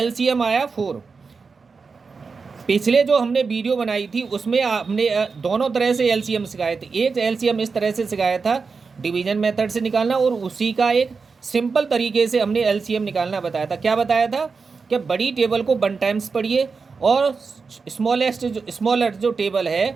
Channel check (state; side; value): quieter; left; 4.8 dB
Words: आया 4। पिछले जो हमने वीडियो बनाई थी उसमें हमने दोनों तरह से एलसीएम सिखाए थे। एक एलसीएम इस तरह से सिखाया था, डिवीजन मेथड से निकालना, और उसी का एक सिंपल तरीके से हमने एलसीएम निकालना बताया था। क्या बताया था कि बड़ी टेबल को 1 टाइम्स पढ़िए और स्मॉलर जो टेबल है